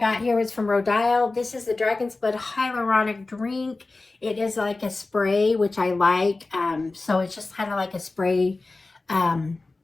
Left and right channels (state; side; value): quieter; right; 3.4 dB